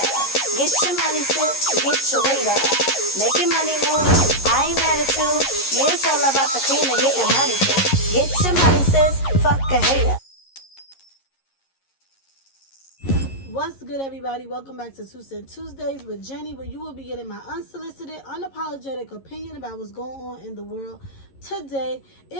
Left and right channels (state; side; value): late; right; 11 ms